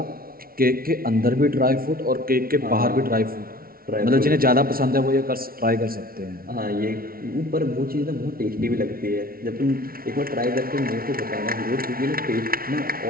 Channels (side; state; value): left; late; 0.43 ms